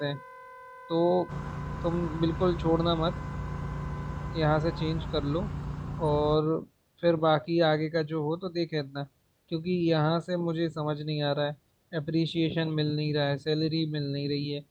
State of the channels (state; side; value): identical; both; correlation 1.00